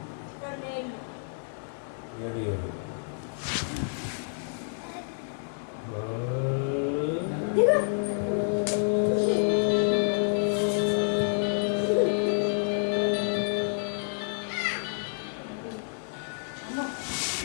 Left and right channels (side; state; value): right; silent; digital silence